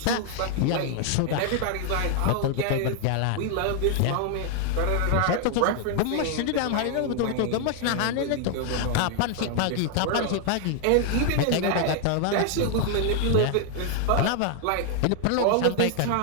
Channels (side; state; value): both; different; correlation 0.00